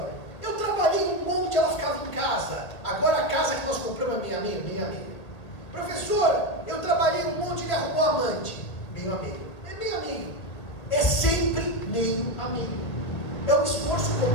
eu trabalhei um monte, ela ficava em casa. Agora a casa que nós compramos é meio a meio, meio a meio. Professor, eu trabalhei um monte, ele arrumou amante. Meio a meio. É meio a meio. É sempre meio a meio. É um esforço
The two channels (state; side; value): late; right; 2.0 ms